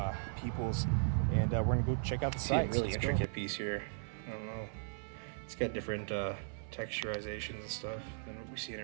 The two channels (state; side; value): silent; left; 53 dB below the other